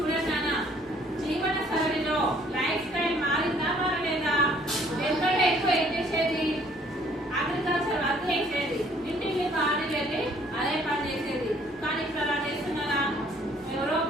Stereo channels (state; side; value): normal; both; correlation 0.61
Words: నాన్న జీవన శైలిలో లైఫ్ స్టైల్ మారిందా మారలేదా ఎందుకంటే ఎక్కువ ఏం చేసేది అగ్రికల్చర్ వర్క్ చేసేది ఇంటికి ఖాళీ వెళ్ళి అదే పని చేసేది కానీ ఇప్పుడు అలా చేస్తున్నారా ఎవరో